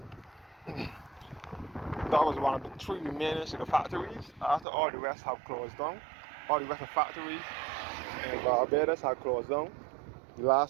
That was one of the 3 remaining sugar factories. After all the rest have closed down, all the rest of factories in Barbados have closed down. The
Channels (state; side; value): drops out; left; at 4.7 s